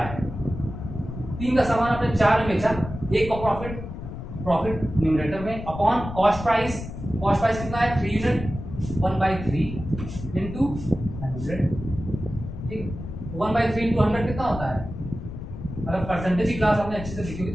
है, 3 का सामान आपने 4 में बेचा, 1 का प्रॉफिट, प्रॉफिट न्यूमरेटर में upon cost price, cost price कितना है 3 यूनिट, 1/3 इंटू 100। ठीक, 1/3 इंटू 100 कितना होता है, अगर परसेंटेज की क्लास आपने अच्छे से लिखी हुई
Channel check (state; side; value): noise; left; rumble, 9 dB below the sound